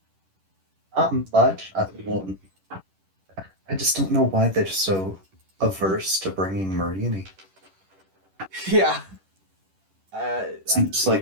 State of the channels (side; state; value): left; late; 10 ms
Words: Not much. I just don't know why they're so averse to bringing Marini. Yeah. Seems